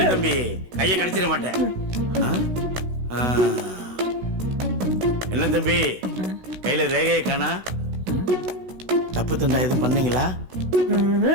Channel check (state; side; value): late; left; 16 ms